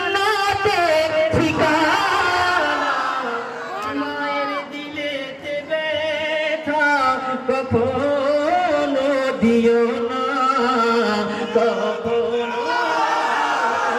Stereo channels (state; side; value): identical; both; correlation 1.00